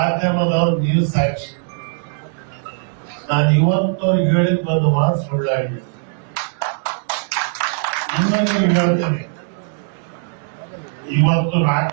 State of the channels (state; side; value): silent; left; 64 dB below the other